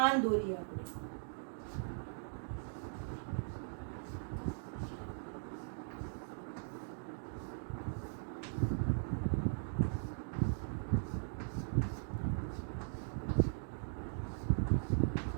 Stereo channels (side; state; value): left; silent; digital silence